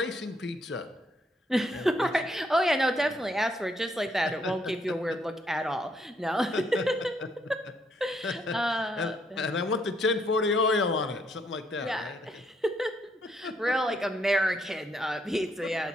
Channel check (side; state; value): both; normal; correlation 0.72